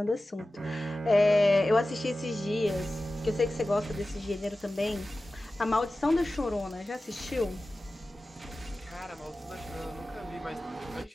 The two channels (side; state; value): both; normal; correlation 0.95